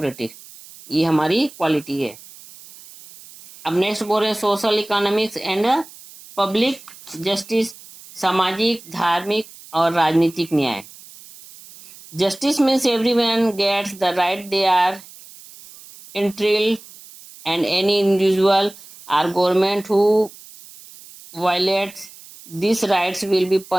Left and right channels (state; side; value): noise; right; hiss, 20 dB below the sound